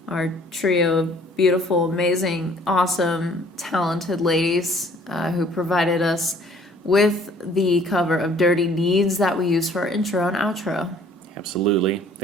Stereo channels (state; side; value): normal; both; correlation 0.57